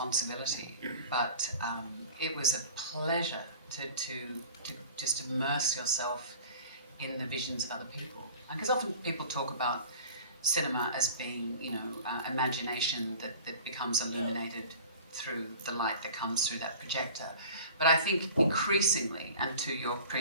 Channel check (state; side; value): inverted; both; correlation -0.42